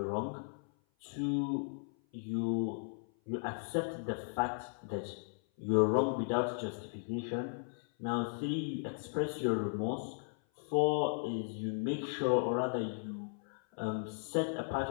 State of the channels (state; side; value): silent; right; 54 dB below the other